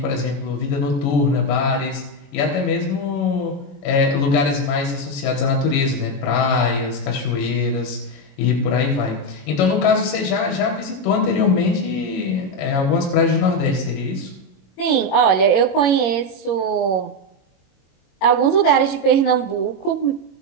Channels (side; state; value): right; late; 21 ms